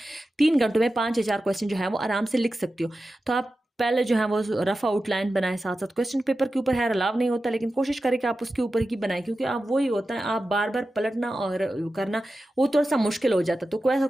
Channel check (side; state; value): both; normal; correlation 0.93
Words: 3 घंटों में 5 या 4 क्वेश्चन जो है वो आराम से लिख सकती हूँ। तो आप पहले जो है वो रफ आउटलाइन बनाए, साथ साथ क्वेश्चन पेपर के ऊपर है अलाव नहीं होता, लेकिन कोशिश करें कि आप उसके ऊपर ही बनाएं, क्योंकि आप वही होता है आप बार बार पलटना और करना वो थोड़ा सा मुश्किल हो जाता है। तो